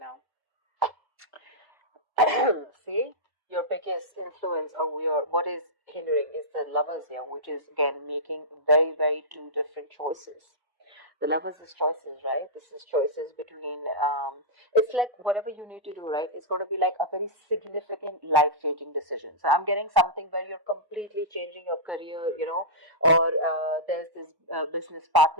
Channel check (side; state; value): left; late; 1.1 ms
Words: See, your biggest influence or what is hindering is the lovers here, which is again making very two different choices. The lovers is choices, right? This is choices between it's like whatever you need to do, right? It's going to be like a very significant life-changing decision. So I'm getting something where you're completely changing your career, or there's this business